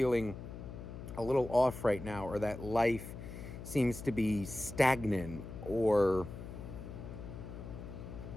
a little off right now, or that life seems to be stagnant, or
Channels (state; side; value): noise; left; hum, 10 dB below the sound